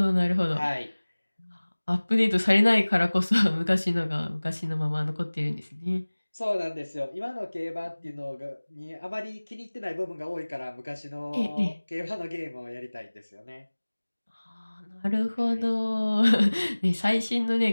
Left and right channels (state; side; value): inverted; both; correlation -1.00